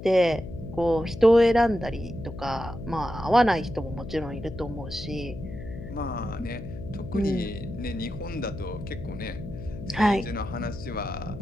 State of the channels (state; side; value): noise; left; hum, 11 dB below the sound